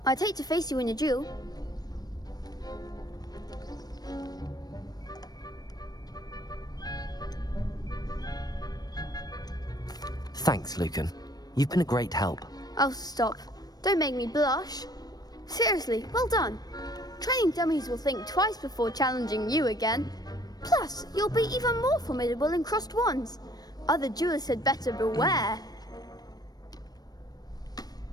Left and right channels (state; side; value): late; right; 0.19 ms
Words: I'd hate to face you in a duel. Thanks, Lucan. You've been a great help. Oh, stop. Don't make me blush. Seriously, well done. Training dummies will think twice before challenging you again. Plus, you'll be even more formidable in crossed wands. Other duelists had better beware.